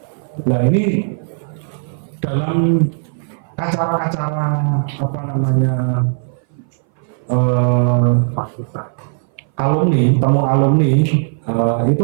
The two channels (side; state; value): left; silent; 60 dB below the other